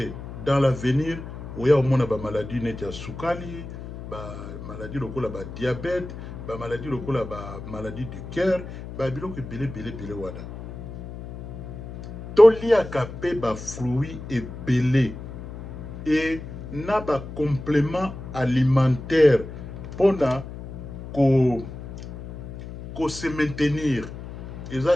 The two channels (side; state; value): left; noise; hum, 11 dB below the sound